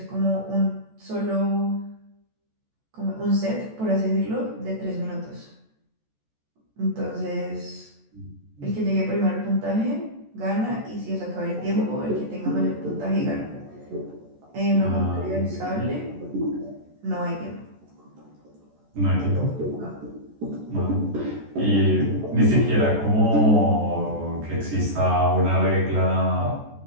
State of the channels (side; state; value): left; late; 14 ms